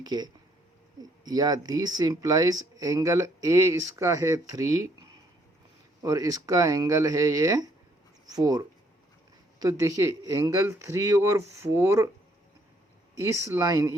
के, या दिस इम्प्लाइज एंगल ए इसका है 3 और इसका एंगल है ये 4। तो देखिए एंगल 3 और 4 इस लाइन,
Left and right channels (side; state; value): both; normal; correlation 0.67